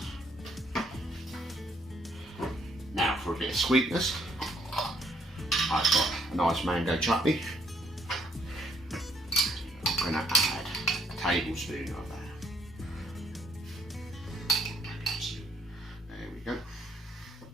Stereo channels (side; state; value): both; normal; correlation 0.67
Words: well. Now for a bit of sweetness, I've got a nice mango chutney. I'm going to add a tablespoon of that.